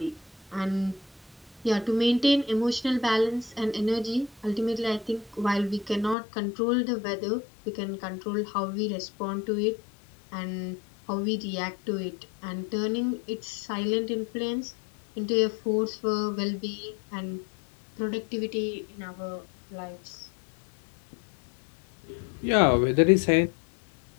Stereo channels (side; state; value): right; drops out; at 6.2 s